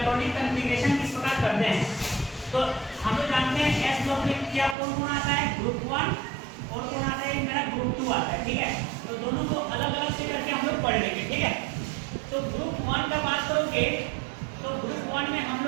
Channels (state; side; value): drops out; left; at 4.8 s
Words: कॉन्फ़िगरेशन किस प्रकार करते हैं, तो हम लोग जानते हैं एस ब्लॉक में क्या कौन कौन आता है, ग्रुप 1 और कौन आता है, मेरा ग्रुप 2 आता है। ठीक है, तो दोनों को अलग अलग से करके हम लोग पढ़ लेंगे। ठीक है, तो ग्रुप 1 का बात करोगे तो ग्रुप 1 में हम